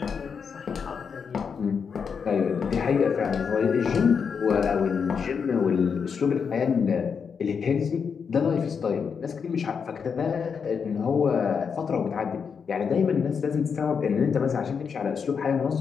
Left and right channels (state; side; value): quieter; right; 6.3 dB